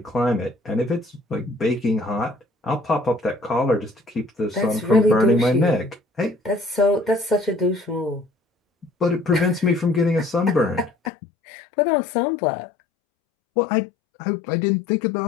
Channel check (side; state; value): right; drops out; at 11.1 s